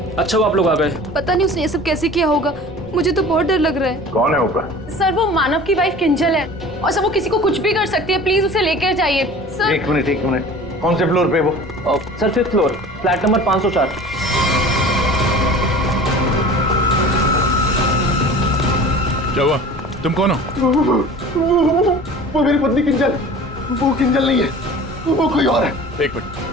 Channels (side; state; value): both; normal; correlation 0.41